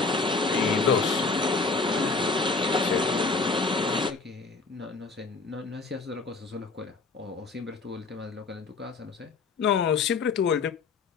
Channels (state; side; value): quieter; right; 4.2 dB